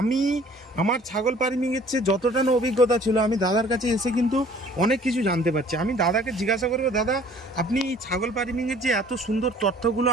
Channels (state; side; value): normal; both; correlation 0.54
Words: আমার ছাগল ফার্মিংয়ের চেয়ে যতটা না অভিজ্ঞতা ছিল, আমি দাদার কাছে এসে কিন্তু অনেক কিছু জানতে পারছি। আমি দাদাকে জিজ্ঞাসা করবো, দাদা আপনি ছাগল ফার্মিংয়ের যে এত সুন্দর তথ্যগুলো